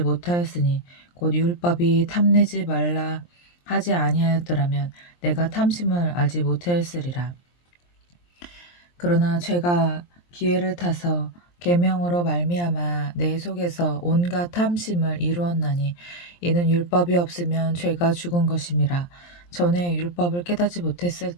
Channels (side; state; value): right; late; 23 ms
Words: 못하였으니 곧 율법이 탐내지 말라 하지 아니하였더라면 내가 탐심을 알지 못하였으리라. 그러나 죄가 기회를 타서 계명으로 말미암아 내 속에서 온갖 탐심을 이루었나니 이는 율법이 없으면 죄가 죽은 것임이라. 전에 율법을 깨닫지 못했을